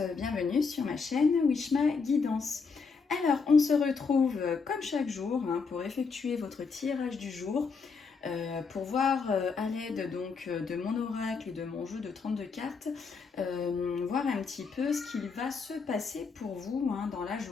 bienvenue sur ma chaîne Wishma Guidance. Alors, on se retrouve comme chaque jour pour effectuer votre tirage du jour, pour voir à l'aide donc de mon oracle et de mon jeu de 32 cartes, voir un petit peu ce qu'il va se passer pour vous dans la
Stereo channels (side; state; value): right; quieter; 5.0 dB